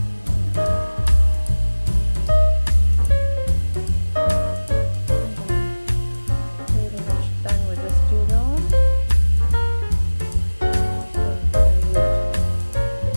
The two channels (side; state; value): both; inverted; correlation -1.00